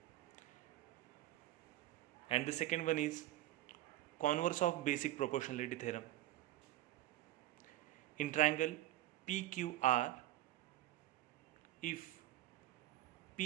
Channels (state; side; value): quieter; left; 14.9 dB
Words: And the second one is converse of basic proportionality theorem. In triangle PQR, if